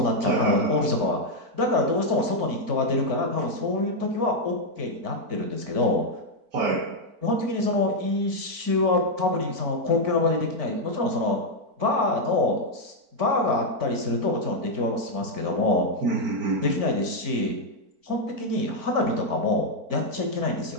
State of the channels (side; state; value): left; late; 4.5 ms